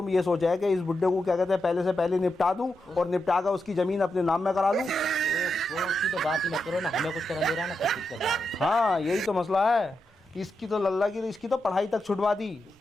ये सोचा है कि इस बुड्ढे को क्या कहते हैं पहले से पहले निपटा दूं और निपटा कर उसकी जमीन अपने नाम में करा लूं। वो उसकी तो बात ही मत करो ना, हमें कुछ करने दे रहा है ना कुछ कर रहा है। हाँ यही तो मसला है। इसकी तो लल्ला की, इसकी तो पढ़ाई तक छुड़वा दी।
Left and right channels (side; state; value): both; normal; correlation 0.86